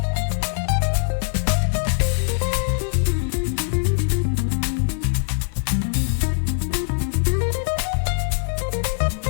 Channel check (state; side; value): silent; right; digital silence